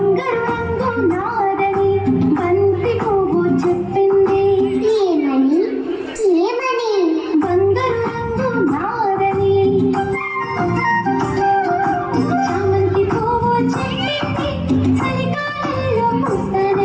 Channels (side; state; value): both; identical; correlation 1.00